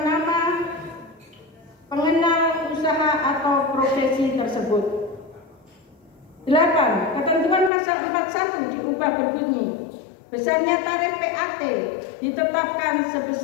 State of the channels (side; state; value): right; drops out; at 7.7 s